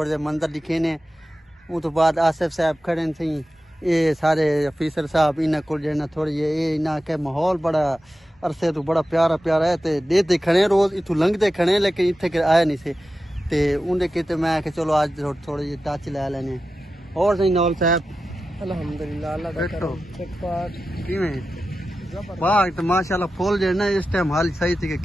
मंजर दिखे ने उस तो बाद आसिफ साहब खड़े थे ये सारे अफीसर साहब इन्हें को जेना थोड़ी ये इन्हें के माहौल बड़ा अरसे तो बड़ा प्यारा प्यारा है ते देते खड़े रोज इथू लंघते खड़े लेकिन इतने के आए नहीं से ते उन्हें कहते मैं कि चलो आज थोड़े ये टच ले लेने और सही नौल साहब अल्हम्दुलिल्लाह अल्लाह का करम ठीक ठाक किवें वाह तो माशाल्लाह फूल जो ना इस टाइम हाल सही थी के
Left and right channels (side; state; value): both; normal; correlation 0.92